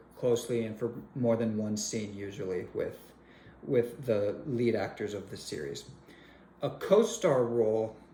closely and for more than one scene, usually with the lead actors of the series. A co-star role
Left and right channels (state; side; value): identical; both; correlation 1.00